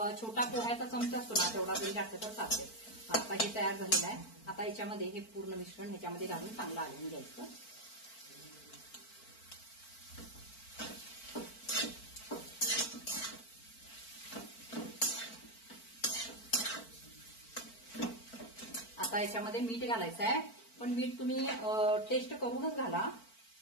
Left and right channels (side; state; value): right; late; 4.5 ms